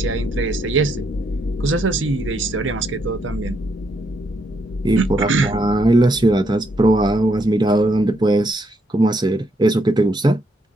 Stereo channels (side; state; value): both; normal; correlation 0.75